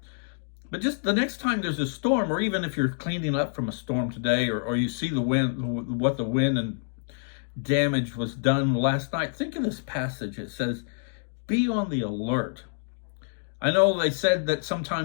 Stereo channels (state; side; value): silent; right; digital silence